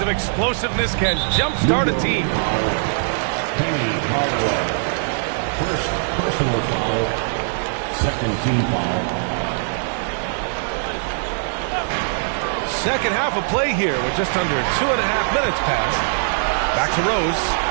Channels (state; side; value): silent; left; digital silence